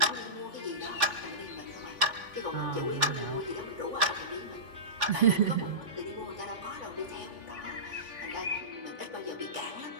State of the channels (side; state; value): left; late; 3.5 ms